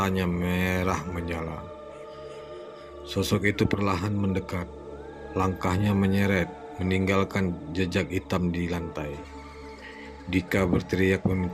merah menyala. Sosok itu perlahan mendekat. Langkahnya menyeret, meninggalkan jejak hitam di lantai. Dika berteriak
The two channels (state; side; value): identical; both; correlation 1.00